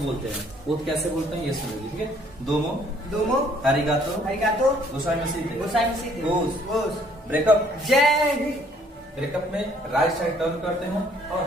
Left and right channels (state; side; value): normal; both; correlation 0.62